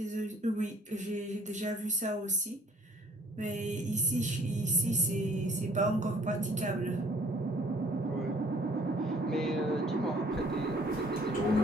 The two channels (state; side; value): normal; both; correlation 0.58